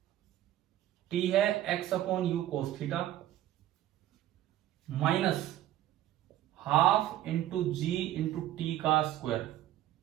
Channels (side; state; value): left; quieter; 13.2 dB